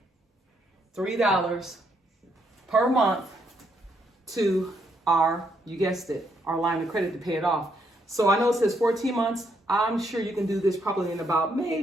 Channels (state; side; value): normal; both; correlation 0.75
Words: per month to our, you guessed it, our line of credit to pay it off. So I know it says 14 months. I'm sure you can do this probably in about